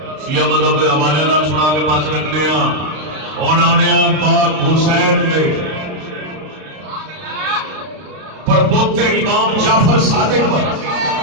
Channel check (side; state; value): left; late; 32 ms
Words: شیعہ مذہب کے حوالے نال سنا کے پاس رکھنے ہاں پاک حسین کے پر پوتے امام جعفر صادق پر